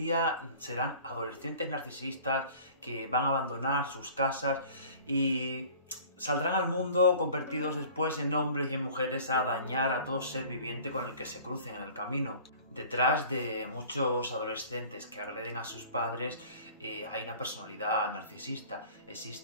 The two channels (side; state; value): both; inverted; correlation -0.47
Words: serán adolescentes narcisistas que van a abandonar sus casas y saldrán al mundo convertidos después en hombres y en mujeres a dañar a todo ser viviente con el que se crucen en el camino. Detrás de muchos adolescentes que agreden a sus padres hay una personalidad narcisista.